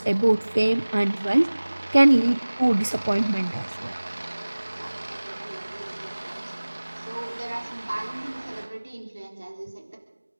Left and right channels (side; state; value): both; inverted; correlation -1.00